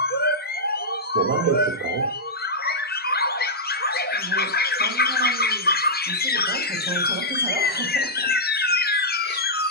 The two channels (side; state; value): both; normal; correlation -0.10